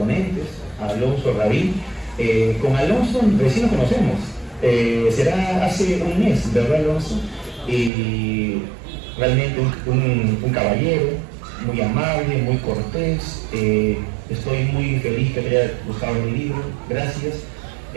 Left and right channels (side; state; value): left; drops out; at 7.9 s